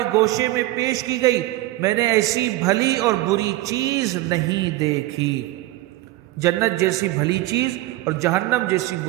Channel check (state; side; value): quieter; left; 17.7 dB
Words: گوشے میں پیش کی گئی، میں نے ایسی بھلی اور بری چیز نہیں دیکھی۔ جنت جیسی بھلی چیز اور جہنم جیسی